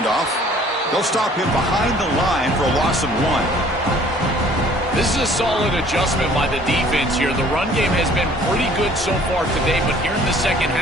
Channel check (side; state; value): both; normal; correlation 0.55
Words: They'll stop him behind the line for a loss of 1. This is a solid adjustment by the defense here. The run game has been pretty good so far today, but here in the second